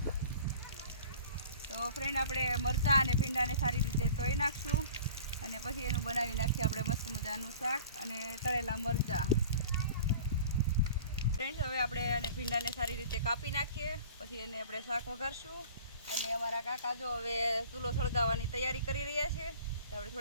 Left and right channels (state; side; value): inverted; both; correlation -0.45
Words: तो फ्रेंड આપણે મરચાં અને ભીંડાને સારી રીતે ધોઈ નાખશું અને પછી એનું બનાવી નાખીએ આપણે મસ્ત મજાનું શાક અને તળેલા મરચાં। ફ્રેન્ડ્સ હવે આપણે આને ભીંડાને સારી રીતે કાપી નાખીએ, પછી એને આપણે શાક વઘારશું। અને અમારા કાકા જો હવે ચૂલો સળગાવવાની તૈયારી કરી રહ્યા છે, તો આપણે